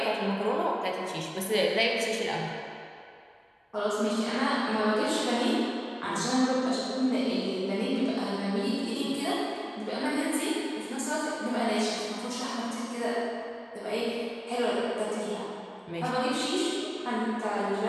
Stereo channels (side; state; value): both; identical; correlation 1.00